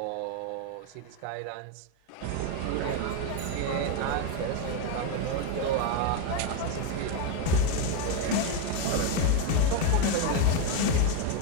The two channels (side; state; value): both; different; correlation 0.02